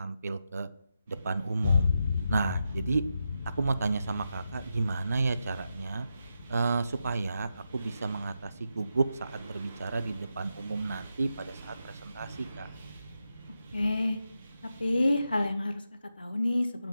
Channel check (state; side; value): inverted; both; correlation -0.87